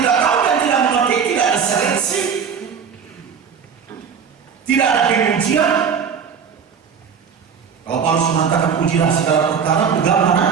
tahu dan tidak mengerti, tidak ada seleksi, tidak ada pengujian. Kalau Paulus mengatakan ujilah segala perkara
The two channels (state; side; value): quieter; left; 6.8 dB